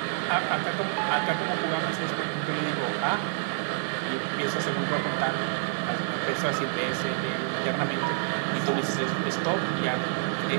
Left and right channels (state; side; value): silent; left; 60 dB below the other